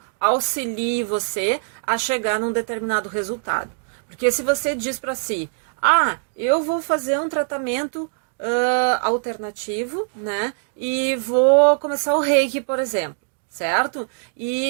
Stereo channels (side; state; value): left; silent; digital silence